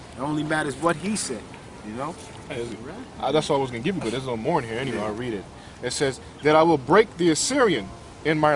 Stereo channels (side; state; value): both; identical; correlation 1.00